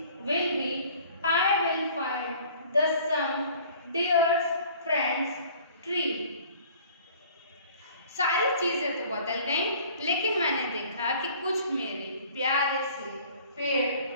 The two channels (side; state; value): both; inverted; correlation -0.51